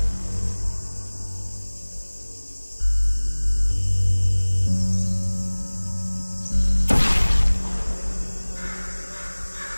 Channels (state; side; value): inverted; both; correlation -1.00